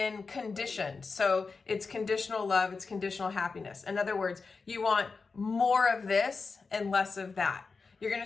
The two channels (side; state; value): right; quieter; 4.5 dB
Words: conditioned. So it's conditional love, it's conditional happiness. In other words, you want more of this and less of that. You're going